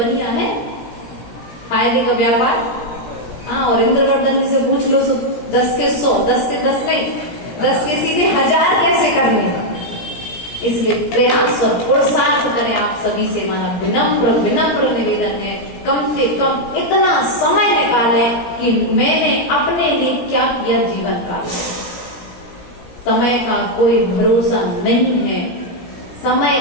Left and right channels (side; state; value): right; late; 17 ms